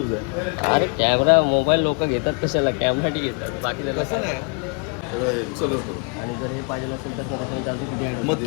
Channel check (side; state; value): right; quieter; 37.2 dB